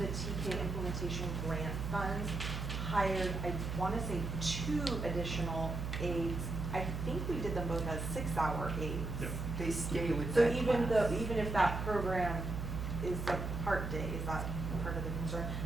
TK implementation grant funds, hired, I wanna say 2 additional aides. I think we did them both as 6-hour aides. Yep. They stay with So that even class. if that program is a part day, is that part of the concern?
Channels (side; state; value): right; noise; hum, 4 dB below the sound